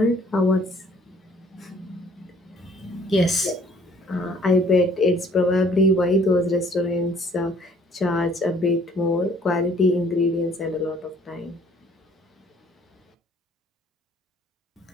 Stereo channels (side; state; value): both; normal; correlation 0.59